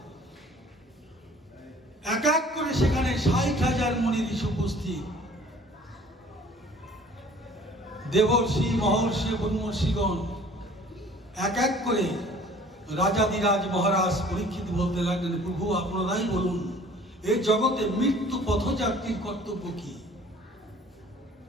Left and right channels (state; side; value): normal; both; correlation 0.51